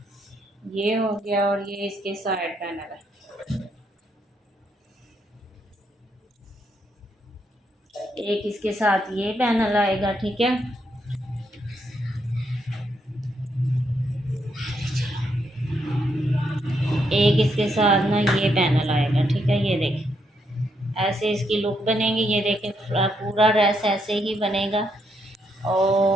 ये हो गया, और ये इसके साइड पैनल है। एक इसके साथ ये पैनल आएगा, ठीक है। एक इसके साथ ना ये पैनल आएगा, ठीक है। ये देखें, ऐसे इसकी लुक बनेगी। ये देखें, पूरा ड्रेस ऐसे ही बनेगा।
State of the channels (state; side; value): normal; both; correlation 0.77